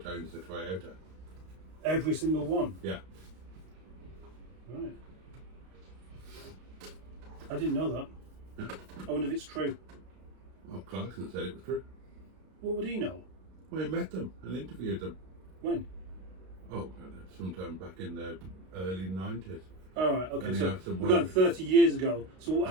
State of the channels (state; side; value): late; left; 32 ms